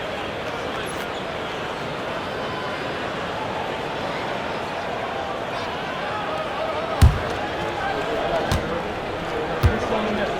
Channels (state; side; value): identical; both; correlation 1.00